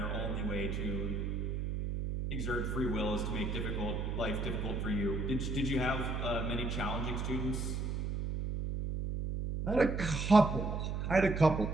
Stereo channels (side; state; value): right; noise; hum, 2 dB below the sound